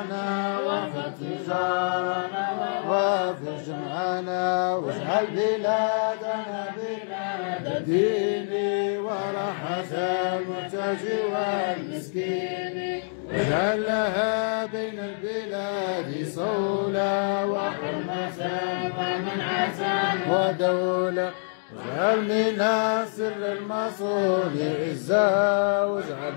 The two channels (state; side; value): silent; right; digital silence